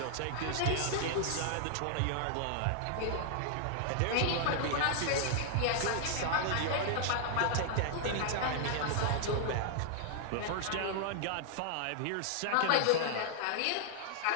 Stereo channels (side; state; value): both; different; correlation -0.01